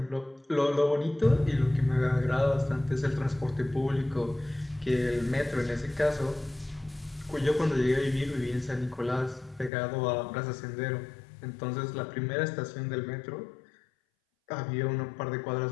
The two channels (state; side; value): drops out; right; at 9.7 s